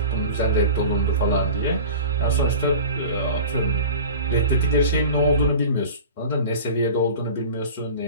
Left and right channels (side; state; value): both; inverted; correlation -0.37